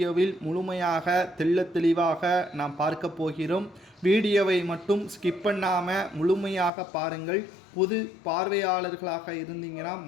முழுமையாக தெளிவாக நாம் பார்க்க போகிறோம். வீடியோவை மட்டும் ஸ்கிப் பண்ணாமல் முழுமையாக பாருங்கள். புது பார்வையாளர்களாக இருந்தீங்கன்னா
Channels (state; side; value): drops out; right; at 6.7 s